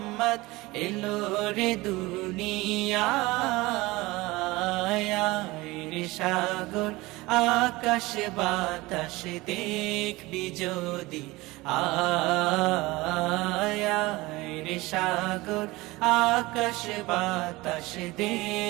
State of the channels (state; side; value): quieter; left; 21.0 dB